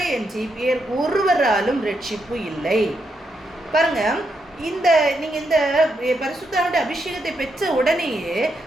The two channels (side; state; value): both; normal; correlation 0.80